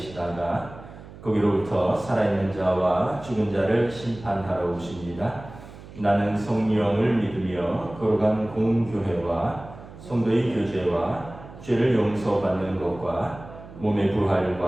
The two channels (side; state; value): right; noise; hum, 17 dB below the sound